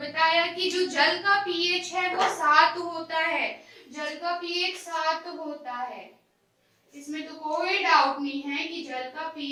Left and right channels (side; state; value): both; identical; correlation 1.00